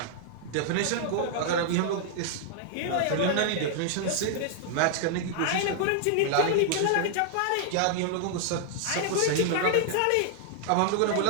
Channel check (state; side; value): different; both; correlation -0.01